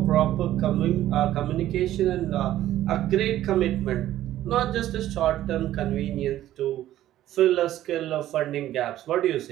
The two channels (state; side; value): quieter; left; 13.4 dB